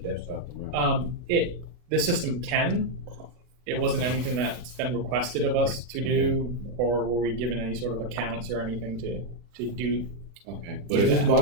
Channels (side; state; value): left; late; 40 ms